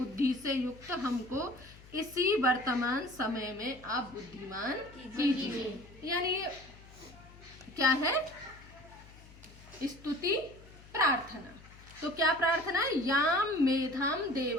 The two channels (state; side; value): noise; left; hum, 21 dB below the sound